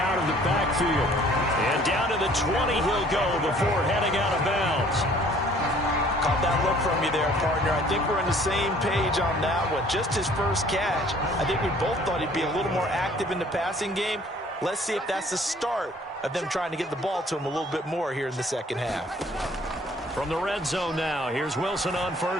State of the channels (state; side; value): normal; both; correlation 0.56